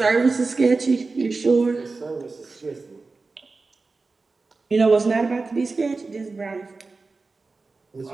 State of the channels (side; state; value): left; quieter; 3.9 dB